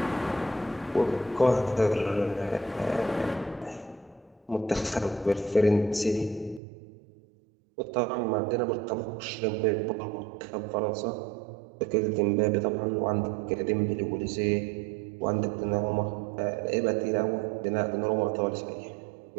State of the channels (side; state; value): left; drops out; at 6.6 s